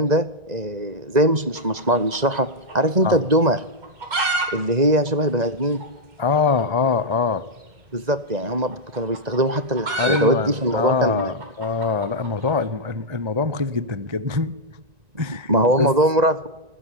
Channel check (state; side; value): late; left; 2.1 ms